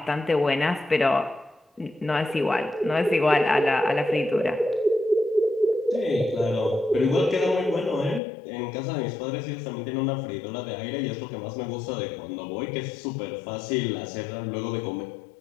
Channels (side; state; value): right; drops out; at 8.2 s